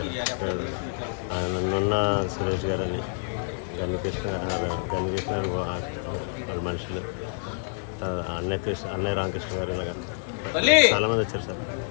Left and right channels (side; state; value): right; silent; digital silence